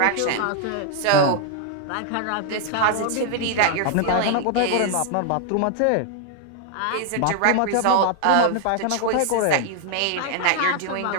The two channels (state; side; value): different; both; correlation 0.00